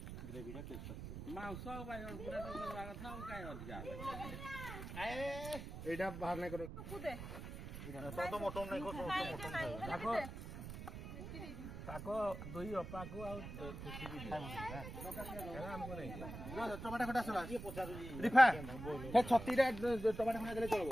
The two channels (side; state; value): right; noise; rumble, 9 dB below the sound